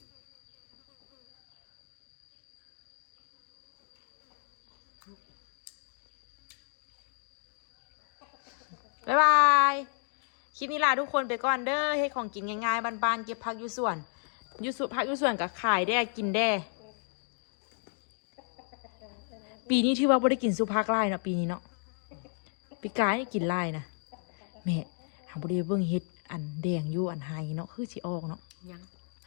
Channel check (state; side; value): silent; right; 56 dB below the other